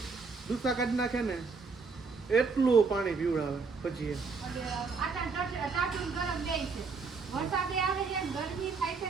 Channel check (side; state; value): left; quieter; 4.8 dB